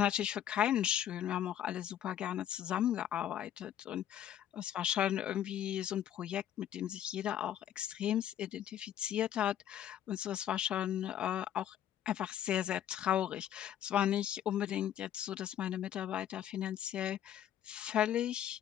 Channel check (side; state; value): right; quieter; 10.8 dB